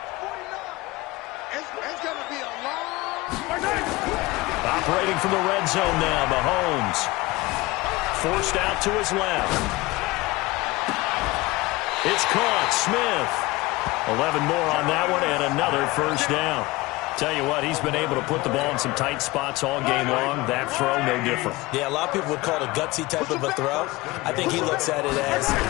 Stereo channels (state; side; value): quieter; right; 21.2 dB